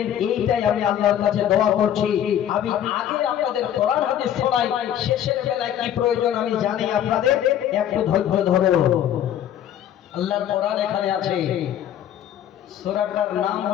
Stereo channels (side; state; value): right; quieter; 10.5 dB